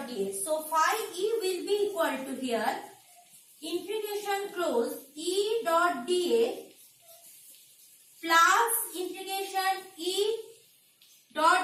dA. So phi E will be equal to here integration close E dot dA plus integration E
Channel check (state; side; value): identical; both; correlation 1.00